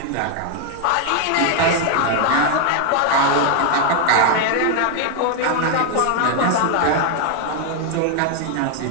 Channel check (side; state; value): both; different; correlation 0.00